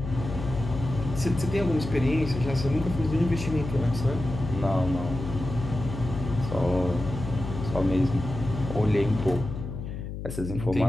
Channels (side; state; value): left; noise; hum, 7 dB below the sound